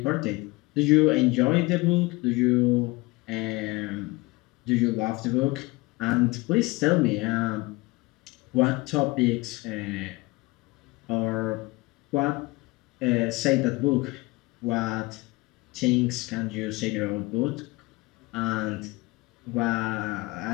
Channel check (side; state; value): right; quieter; 23.1 dB